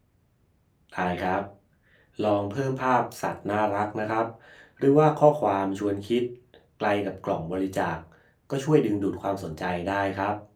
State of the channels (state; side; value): identical; both; correlation 1.00